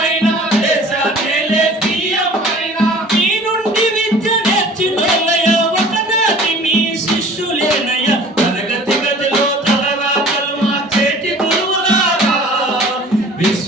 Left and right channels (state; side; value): normal; both; correlation 0.47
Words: అయినా దేశాన్నేలే పిఎం అయినా మీ నుండి విద్య నేర్చినోళ్ళయ ఒకనాటి మీ శిష్యులేనయ. తరగతి గదిలో తలరాతలు మార్చేటి గురువులారా